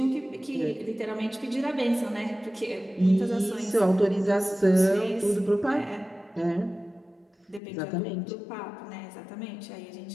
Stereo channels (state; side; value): drops out; right; at 7.6 s